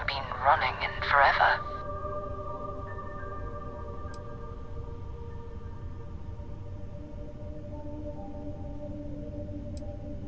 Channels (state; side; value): identical; both; correlation 1.00